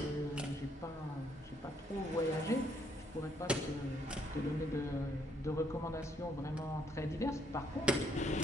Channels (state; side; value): normal; both; correlation 0.70